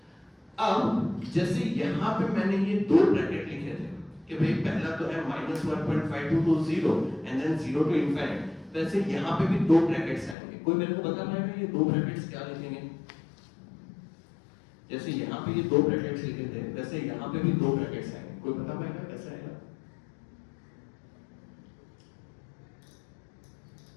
अब जैसे यहां पे मैंने ये दो ब्रैकेट लिखे थे कि भाई पहला तो है -1.52 to 0 and then 0 to infinite, वैसे यहां पे भी दो ब्रैकेट्स आएंगे। कोई मेरे को बता पाएगा ये दो ब्रैकेट्स क्या लिखेंगे? जैसे यहाँ पे ये दो ब्रैकेट्स लिखे थे वैसे यहाँ पे भी दो ब्रैकेट्स आएंगे। कोई बता पाएगा कैसे आएगा?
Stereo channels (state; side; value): drops out; right; at 10.4 s